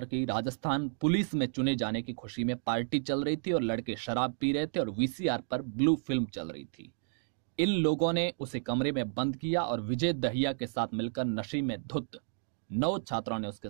की राजस्थान पुलिस में चुने जाने की खुशी में पार्टी चल रही थी और लड़के शराब पी रहे थे और वीसीआर पर ब्लू फिल्म चल रही थी। इन लोगों ने उसे कमरे में बंद किया और विजय दहिया के साथ मिलकर नशे में धुत 9 छात्रों ने उसके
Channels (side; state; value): left; silent; digital silence